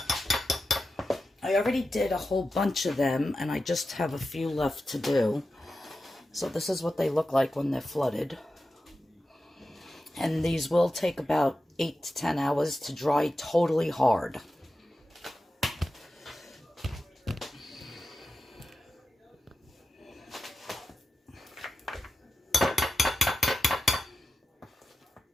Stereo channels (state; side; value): normal; both; correlation 0.91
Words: I already did a whole bunch of them and I just have a few left to do. So this is what they look like when they're flooded. And these will take about 8 to 10 hours to dry totally hard.